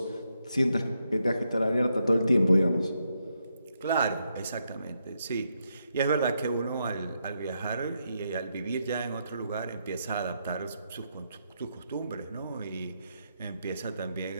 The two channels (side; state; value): both; inverted; correlation -0.80